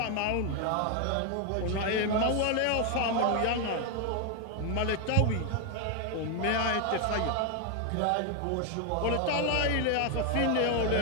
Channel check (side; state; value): both; different; correlation 0.01